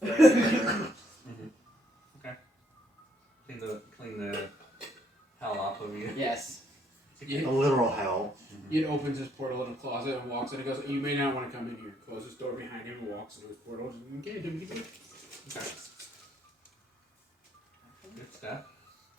Okay. Clean the hell off of you. Yes. A literal hell. It opens his portal in a closet and walks in and goes, "You may not want to come in here." Closes his door behind him and walks into his portal. Okay, okay. Good stuff.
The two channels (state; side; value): normal; both; correlation 0.71